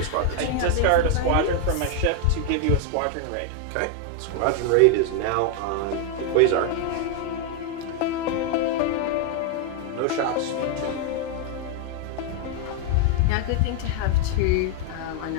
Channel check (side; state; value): both; different; correlation 0.00